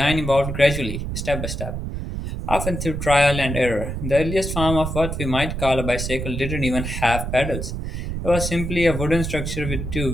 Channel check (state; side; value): noise; right; rumble, 4 dB below the sound